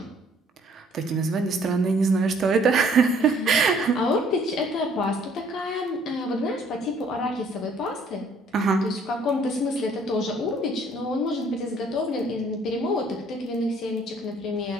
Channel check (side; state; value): both; normal; correlation 0.60